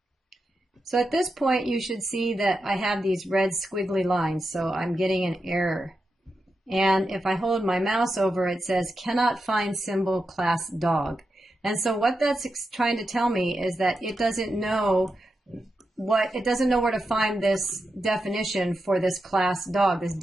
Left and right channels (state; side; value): normal; both; correlation 0.88